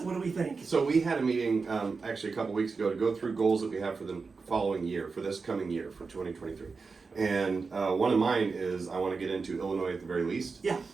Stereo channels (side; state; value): left; quieter; 4.6 dB